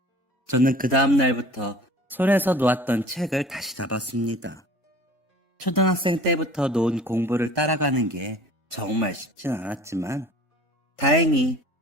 저는 그 다음 날부터 손에서 놓았던 책을 다시 잡았습니다. 초등학생 때부터 놓은 공부를 따라가는 게 정말 쉽진 않았지만 다행히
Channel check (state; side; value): normal; both; correlation 0.46